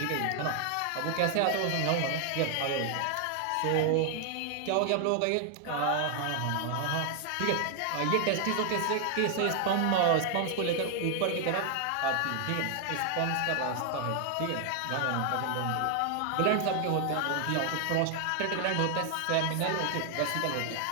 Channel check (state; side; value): different; both; correlation 0.00